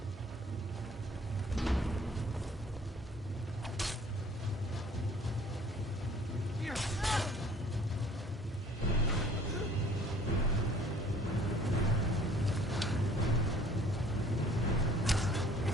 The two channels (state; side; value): normal; both; correlation 0.53